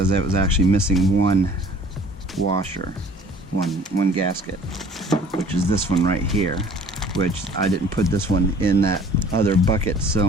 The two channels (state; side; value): normal; both; correlation 0.51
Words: it was actually missing one washer, one gasket, which is this one right here, which I didn't put this one in that other bucket